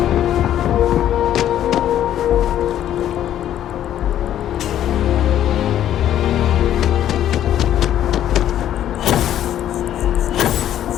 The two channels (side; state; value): right; quieter; 11.4 dB